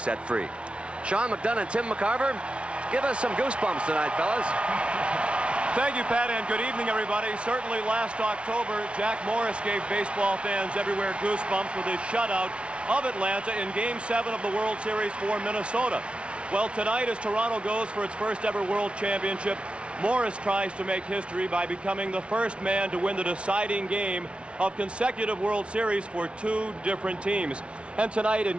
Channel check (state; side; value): late; left; 0.059 ms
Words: free. Sean McDonough and Tim McCarver, give us some goosebumps tonight, fellas. Thank you, Pat, and good evening, everybody. Certainly last October, Jack Morris gave baseball fans everywhere goosebumps with his shutout of Atlanta in Game 7 of the World Series for Minnesota. Well, tonight, as Toronto goes for its first ever World Championship, Morris tries to make history by becoming the first man to win the deciding game of consecutive World Series for 2 different teams. And tonight in